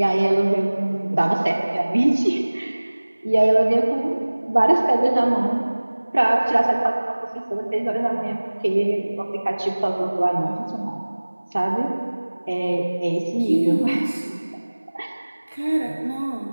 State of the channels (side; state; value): both; inverted; correlation -1.00